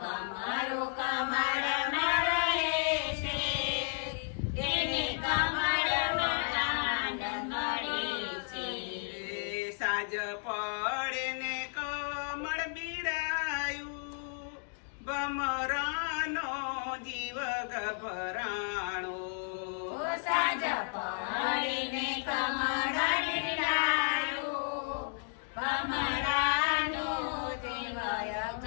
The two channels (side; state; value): right; silent; 56 dB below the other